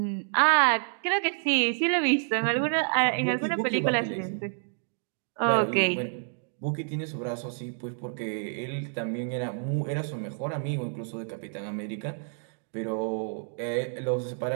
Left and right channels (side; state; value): left; silent; digital silence